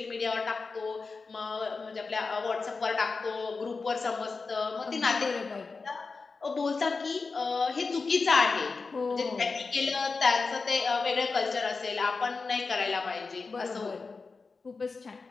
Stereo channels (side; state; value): right; quieter; 4.3 dB